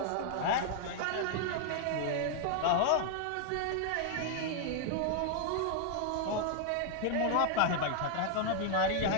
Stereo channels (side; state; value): both; different; correlation 0.00